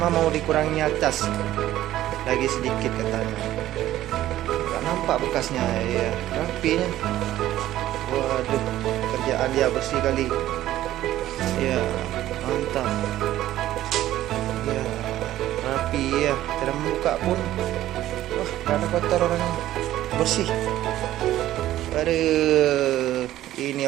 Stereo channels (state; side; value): quieter; left; 13.8 dB